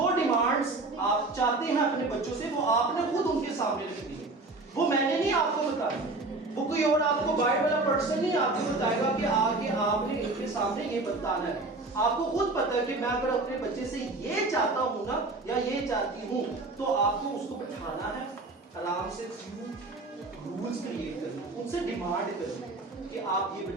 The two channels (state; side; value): quieter; left; 3.2 dB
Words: ڈیمانڈز آپ چاہتے ہیں اپنے بچوں سے وہ آپ نے خود ان کے سامنے رکھ دی ہے، وہ میں نے نہیں آپ کو بتایا، وہ کوئی اور آپ کو باہر والا پرسن نہیں آپ کو بتائے گا کہ آگے آپ نے ان کے سامنے یہ بتانا ہے، آپ کو خود پتہ ہے کہ میں اگر اپنے بچے سے یہ چاہتا ہوں نا یا یہ چاہتی ہوں تو آپ کو اس کو بٹھانا ہے، آرام سے رولز کریٹ کرنا، ان سے ڈیمانڈ کرنا کہ آپ یہ